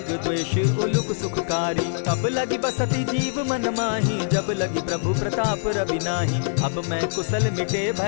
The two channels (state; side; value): silent; right; digital silence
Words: द्वेष उलुक सुखकारी। तब लगी बसती जीव मन माही, जब लगी प्रभु प्रताप रवि नाही। अब मैं कुशल मिटे